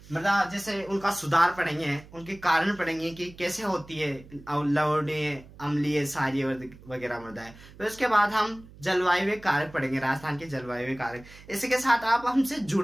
मृदा जैसे उनका सुधार पढ़ेंगे, उनके कारण पढ़ेंगे कि कैसे होती है लवणीय, अम्लीय, क्षारीय वगैरह मृदाएं। तो इसके बाद हम जलवायु कारक पढ़ेंगे, राजस्थान के जलवायु कारक। इसी के साथ आप हमसे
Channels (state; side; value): noise; right; hum, 21 dB below the sound